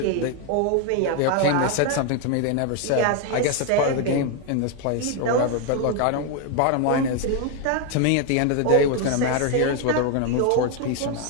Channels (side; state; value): both; different; correlation 0.01